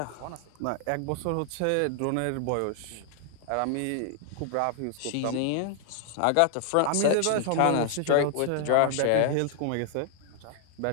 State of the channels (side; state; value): both; different; correlation 0.00